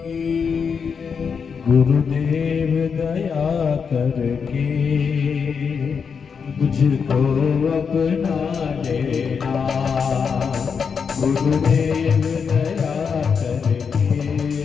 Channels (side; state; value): right; quieter; 6.1 dB